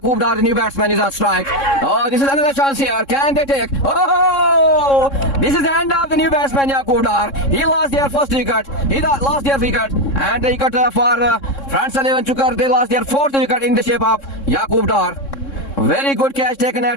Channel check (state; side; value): late; right; 3.6 ms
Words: Dar, the new batsman, is on strike. Oh, this is another chance here. Can they take? Oh, this is the end of the new batsman Yaqub Dar. He lost their first wicket. He lost their wicket. And the wicket for Front Salman Chukar, they lost their 4th wicket in the shape of Yaqub Dar. Very good catch taken